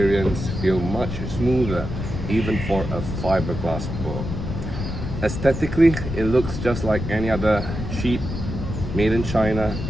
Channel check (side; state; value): left; noise; rumble, 5 dB below the sound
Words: feel much smoother, even for a fiberglass bow. Aesthetically, it looks just like any other cheap, made in China